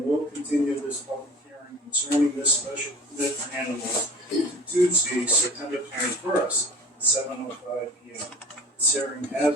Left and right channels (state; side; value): normal; both; correlation 0.42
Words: will continue this public hearing concerning this special permit for animals to Tuesday, September 21st, at 7:05 p.m. This hearing has